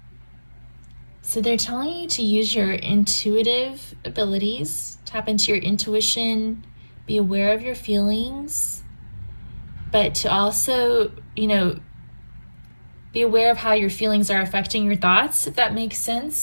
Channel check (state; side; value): inverted; both; correlation -1.00